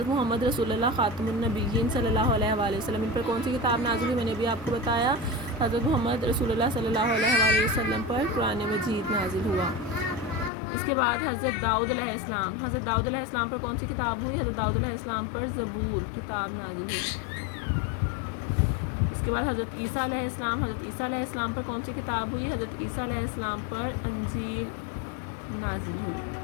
محمد رسول اللہ خاتم النبیین صلی اللہ علیہ وآلہ وسلم، ان پر کون سی کتاب نازل ہوئی؟ میں نے بھی آپ کو بتایا حضرت محمد رسول اللہ صلی اللہ علیہ وآلہ وسلم پر قرآن مجید نازل ہوا۔ اس کے بعد حضرت داؤد علیہ السلام، حضرت داؤد علیہ السلام پر کون سی کتاب ہوئی؟ حضرت داؤد علیہ السلام پر زبور کتاب نازل ہوئی۔ اس کے بعد حضرت عیسیٰ علیہ السلام، حضرت عیسیٰ علیہ السلام پر کون سی کتاب ہوئی؟ حضرت عیسیٰ علیہ السلام پر انجیل نازل ہوئی۔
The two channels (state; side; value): drops out; right; at 10.5 s